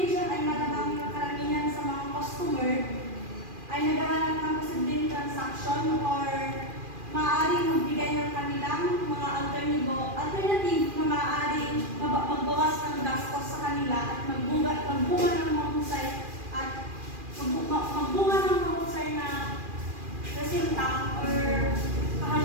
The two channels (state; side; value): late; left; 2.4 ms